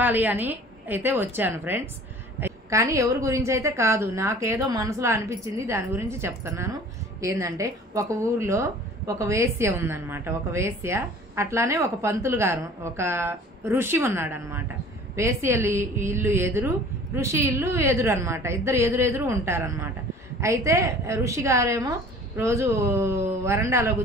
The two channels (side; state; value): both; normal; correlation 0.47